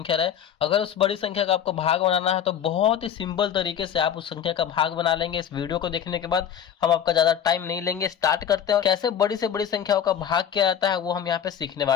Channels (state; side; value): quieter; right; 9.0 dB